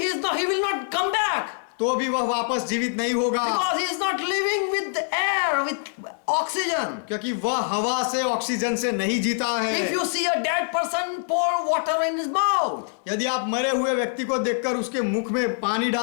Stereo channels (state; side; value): silent; right; digital silence